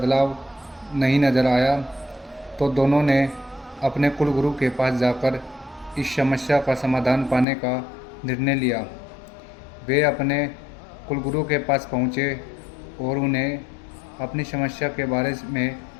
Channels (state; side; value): drops out; right; at 7.5 s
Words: नहीं नज़र आया, तो दोनों ने अपने कुलगुरु के पास जाकर इस समस्या का समाधान पाने का निर्णय लिया। वे अपने कुलगुरु के पास पहुँचे और उन्हें अपनी समस्या के बारे में